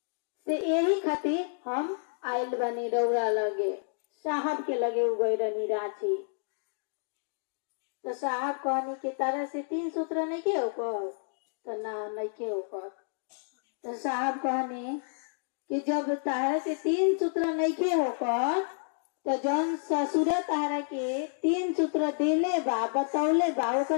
से यही खातिर हम आयल बनी रौरा लगे, साहब के लगे उगई रहनी रांची। तो साहब कहनी कि तारा से 3 सूत्र नहीं के होकर, तो ना नहीं के होकर। तो साहब कहनी कि जब तारा से 3 सूत्र नहीं के होकर, तो जौन ससुर तारा के 3 सूत्र देले बा बतौले बा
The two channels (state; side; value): silent; right; digital silence